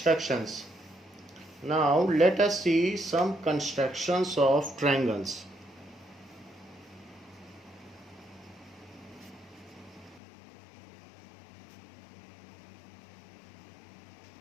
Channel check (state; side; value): drops out; right; at 10.2 s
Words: Now let us see some constructions of triangles.